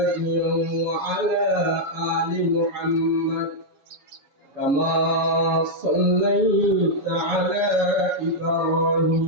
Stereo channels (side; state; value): left; late; 7.1 ms